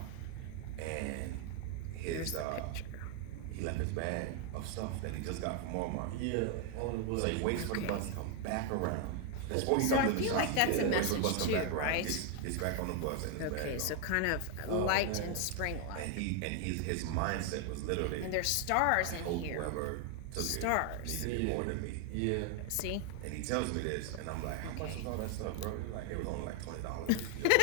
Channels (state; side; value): different; both; correlation 0.01